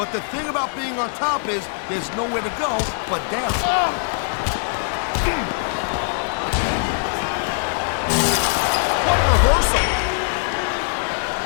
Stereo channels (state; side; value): silent; right; digital silence